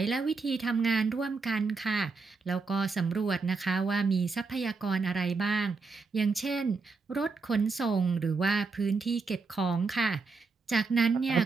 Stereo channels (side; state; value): left; quieter; 4.4 dB